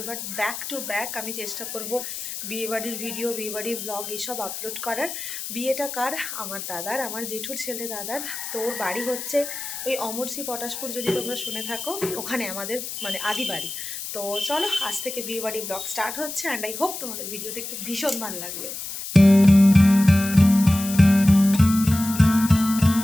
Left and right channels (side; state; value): left; noise; hiss, 8 dB below the sound